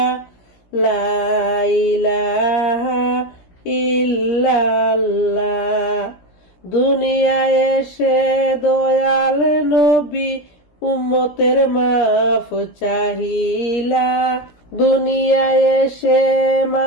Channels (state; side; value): late; right; 17 ms